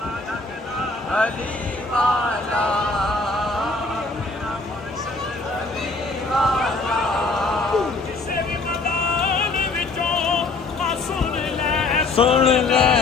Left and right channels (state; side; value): quieter; right; 3.6 dB